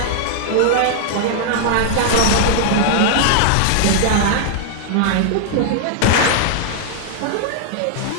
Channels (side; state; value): both; different; correlation -0.01